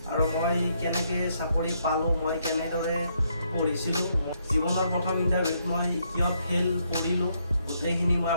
আৰু মই কেনেকৈ চাকৰি পালোঁ, মই কেনেদৰে পঢ়িছিলোঁ, জীৱনৰ প্ৰথম ইণ্টাৰভিউত মই কিয় ফেইল কৰিলোঁ, গোটেইখিনি মই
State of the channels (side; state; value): both; inverted; correlation -0.74